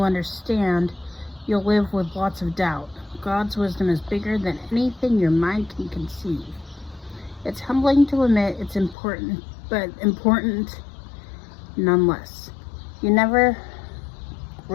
understand, you'll live with lots of doubt. God's wisdom is bigger than anything your mind can conceive. It's humbling to admit it's important, but important nonetheless. You never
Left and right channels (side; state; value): right; drops out; at 9.0 s